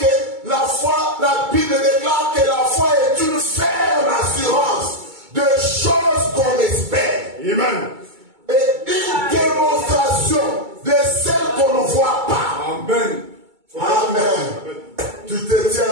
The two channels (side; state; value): left; late; 2.2 ms